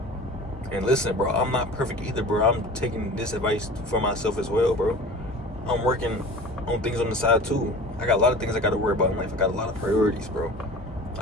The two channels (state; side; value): normal; both; correlation 0.39